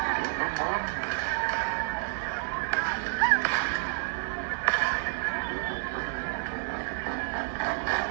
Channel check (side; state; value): left; silent; digital silence